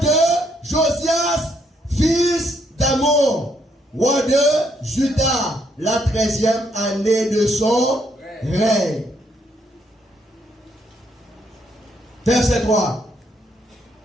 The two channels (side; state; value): both; normal; correlation 0.73